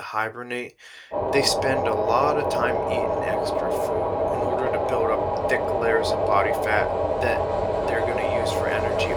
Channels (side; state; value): both; identical; correlation 1.00